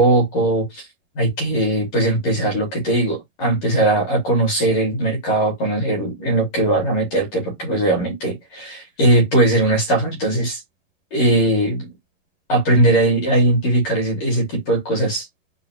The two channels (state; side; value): late; right; 11 ms